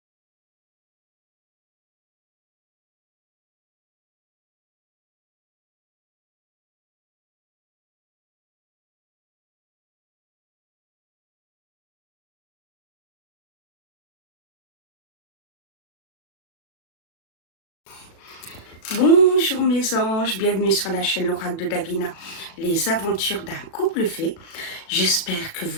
Bonjour mes anges, bienvenue sur la chaîne L'Oracle de Davina, les aventures d'un couple fait. J'espère que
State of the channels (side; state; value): right; late; 36 ms